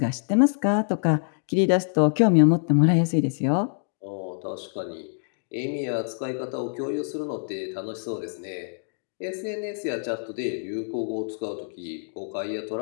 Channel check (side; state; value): right; silent; digital silence